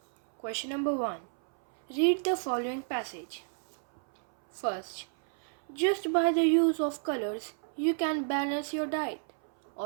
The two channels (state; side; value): silent; left; 57 dB below the other